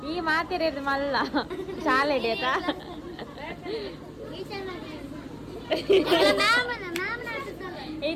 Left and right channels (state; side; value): identical; both; correlation 1.00